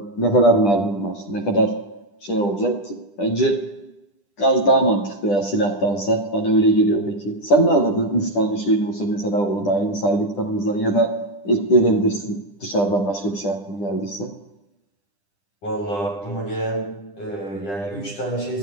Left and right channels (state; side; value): late; right; 10 ms